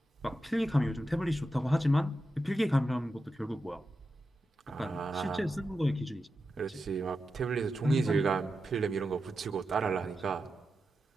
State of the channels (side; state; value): both; normal; correlation 0.89